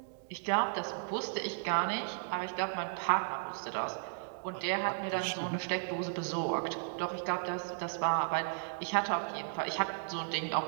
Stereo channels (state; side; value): silent; left; digital silence